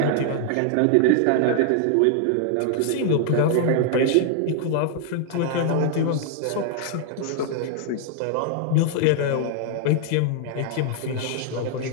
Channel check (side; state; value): both; different; correlation -0.01